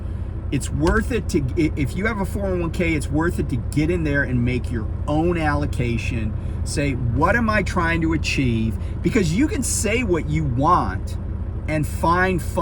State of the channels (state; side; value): identical; both; correlation 1.00